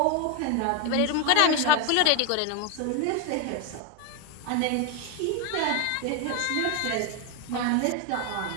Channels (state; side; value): different; both; correlation 0.01